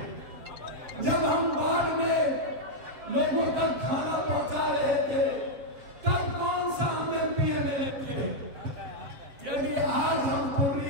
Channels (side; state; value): left; late; 7.5 ms